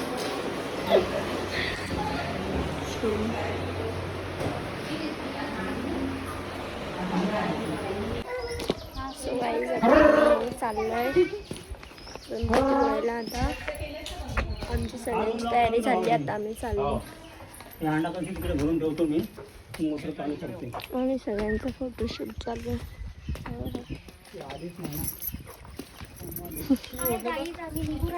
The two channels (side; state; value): both; identical; correlation 1.00